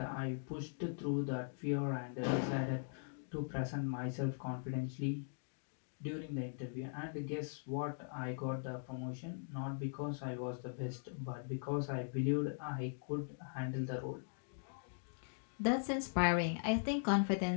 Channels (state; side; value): silent; right; digital silence